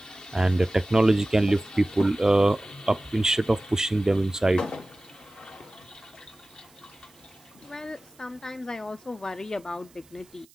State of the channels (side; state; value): right; noise; hiss, 29 dB below the sound